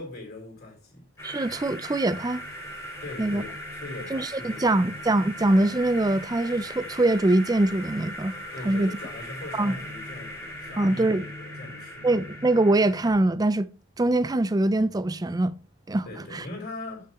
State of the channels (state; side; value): normal; both; correlation 0.77